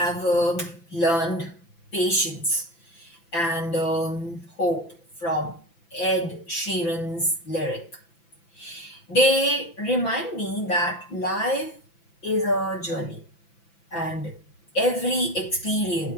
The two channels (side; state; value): right; late; 5.9 ms